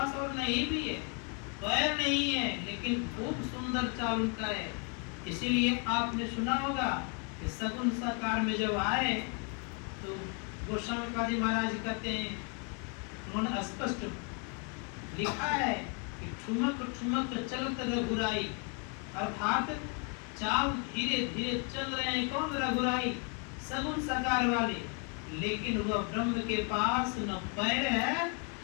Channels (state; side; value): quieter; right; 36.5 dB